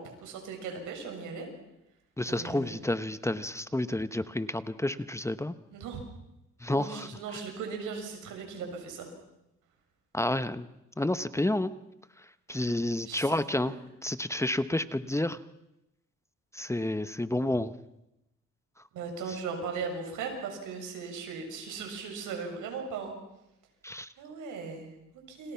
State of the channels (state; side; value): normal; both; correlation 0.66